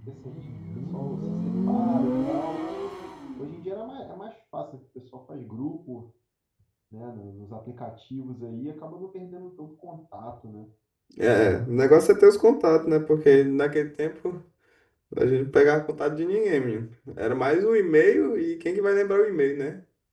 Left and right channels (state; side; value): identical; both; correlation 1.00